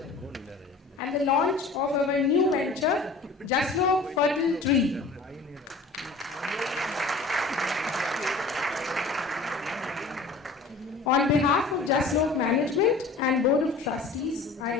and the launch of our new venture, Jaslok Fertiltress. On behalf of Jaslok Management and Board of Trustees, I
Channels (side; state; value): right; quieter; 3.7 dB